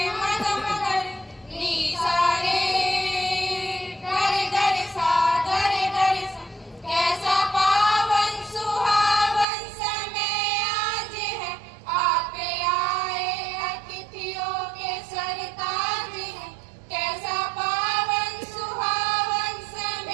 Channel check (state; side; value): drops out; left; at 9.5 s